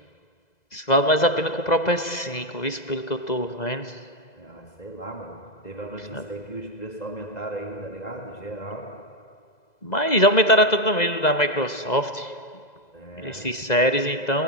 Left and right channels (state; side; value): late; right; 2.0 ms